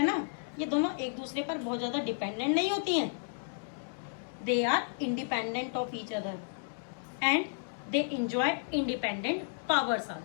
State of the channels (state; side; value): silent; right; digital silence